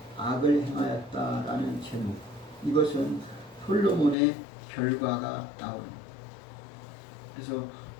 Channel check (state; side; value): drops out; right; at 4.2 s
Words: 악을 행하였다라는 제목, 이것은 솔로몬의 결과가 나옵니다. 그래서